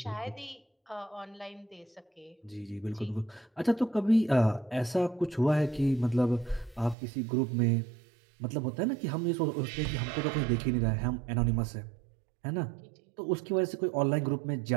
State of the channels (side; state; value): left; drops out; at 7.0 s